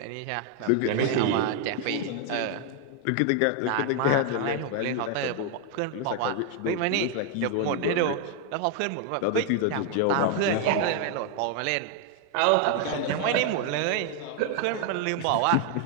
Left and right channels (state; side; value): different; both; correlation 0.01